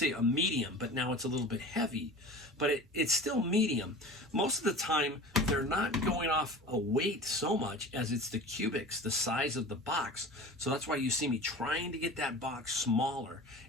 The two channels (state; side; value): normal; both; correlation 0.37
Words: a medium, but now it's a little bit heavy. But it's still medium. Most of the time, they're not going off a weight so much as it's the cubics, the size of the box. So that's why you see me trying to get that box smaller.